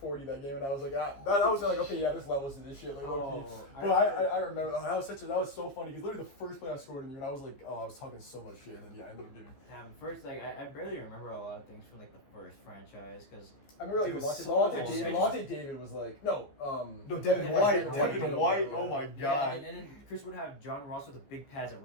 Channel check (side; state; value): right; late; 15 ms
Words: that game, and I was like, that was like, okay, yeah, this levels to this shit, like low-key. Oh, But I remember that was so funny because literally the first play I scored on you, and I was like, oh, I was talking so much shit, and then yeah, I ended up getting. Damn, first, like, I barely remember a lot of things from, like, the first franchise, because... I remember like Dude, Levante so David was like no Devin Yeah, White, Devin Devin White. White. Oh my Yeah, god. and then Chris would have John Ross with the big pads at